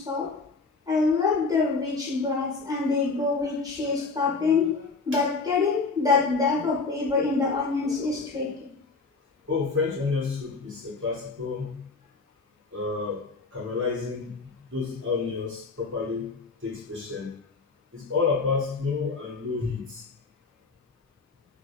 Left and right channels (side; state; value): right; quieter; 4.2 dB